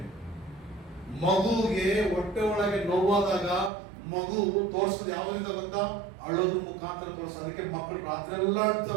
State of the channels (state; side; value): drops out; left; at 3.7 s